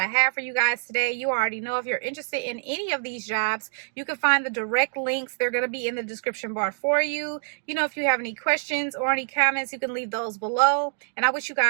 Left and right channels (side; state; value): left; silent; digital silence